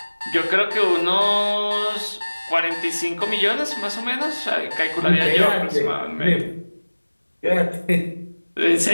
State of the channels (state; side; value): inverted; both; correlation -1.00